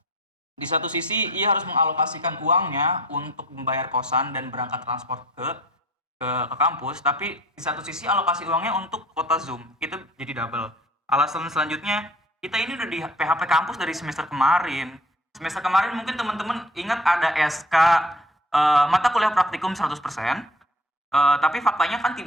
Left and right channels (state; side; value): normal; both; correlation 0.49